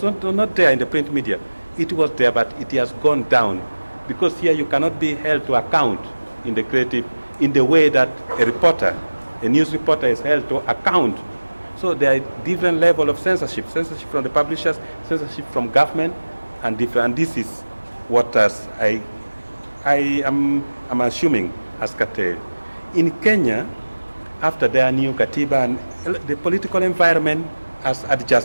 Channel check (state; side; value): inverted; both; correlation -1.00